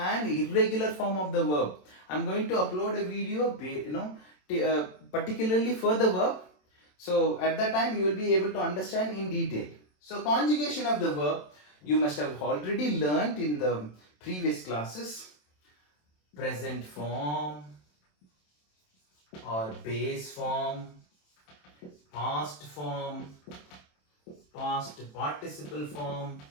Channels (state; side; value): late; right; 27 ms